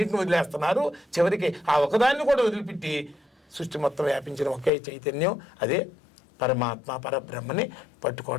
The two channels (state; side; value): drops out; right; at 4.7 s